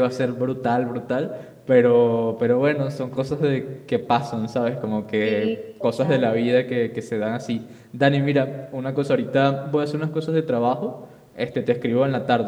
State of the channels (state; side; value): identical; both; correlation 1.00